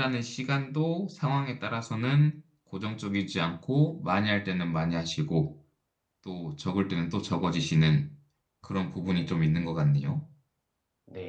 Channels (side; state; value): both; identical; correlation 1.00